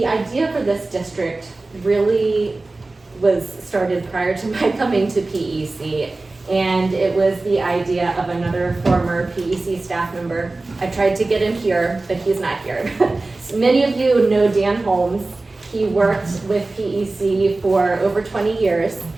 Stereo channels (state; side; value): quieter; left; 3.2 dB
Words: idea for this district really was started prior to my coming to PEC, and it was the idea of another former PEC staff member. I tried to get him here, but he's not here. So many of you know Dan Holmes. He worked with PEC for over 20 years